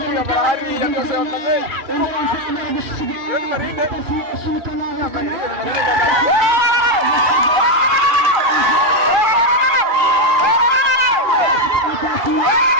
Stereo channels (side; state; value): left; late; 2.4 ms